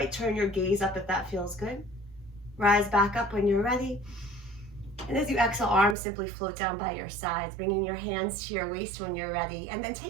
turn your gaze up if that feels good. Rise back up when you're ready. And as you exhale, arms simply float down by your sides, bringing your hands to your waist when you're ready, and then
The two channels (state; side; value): drops out; left; at 6.0 s